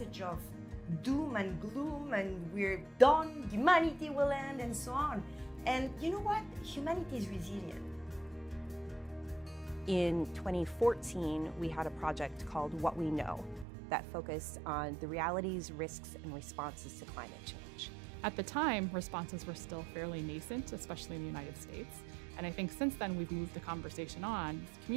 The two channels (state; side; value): drops out; left; at 13.7 s